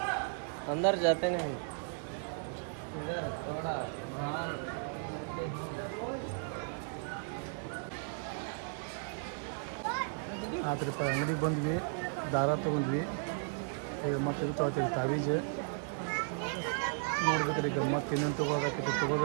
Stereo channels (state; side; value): silent; left; 54 dB below the other